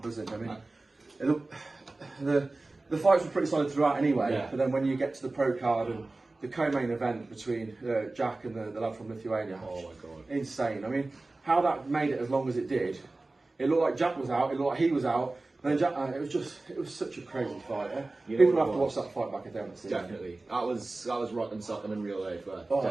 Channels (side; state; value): left; quieter; 3.1 dB